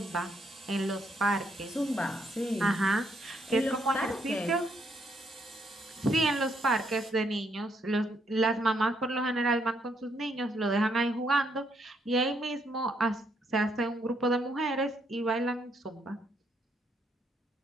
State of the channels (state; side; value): normal; both; correlation 0.73